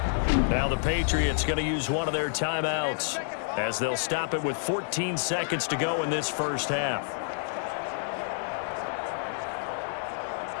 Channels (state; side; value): silent; right; 59 dB below the other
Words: Now the Patriots going to use one of their timeouts, as they'll stop it with 14 seconds to go in this first half.